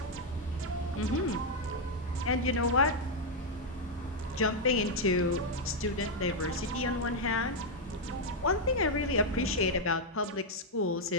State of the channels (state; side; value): normal; both; correlation 0.00